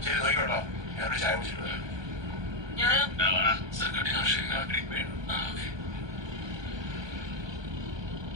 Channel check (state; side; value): late; left; 1.2 ms